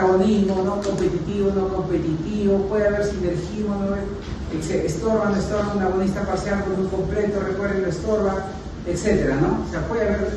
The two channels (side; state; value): both; identical; correlation 1.00